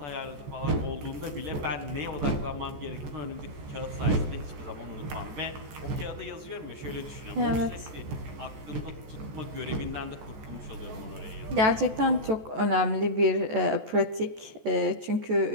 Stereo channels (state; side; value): late; left; 14 ms